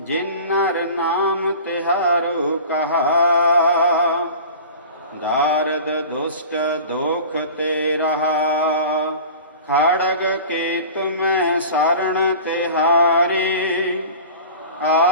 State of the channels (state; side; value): inverted; both; correlation -0.39